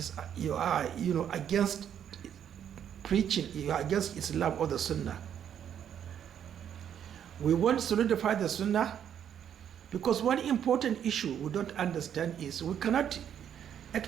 against preaching, you are against Islam or the Sunnah. We want to solidify the Sunnah, because one important issue we don't understand is we cannot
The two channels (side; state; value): left; quieter; 9.2 dB